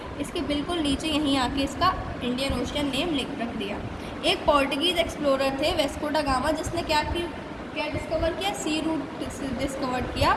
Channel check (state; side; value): identical; both; correlation 1.00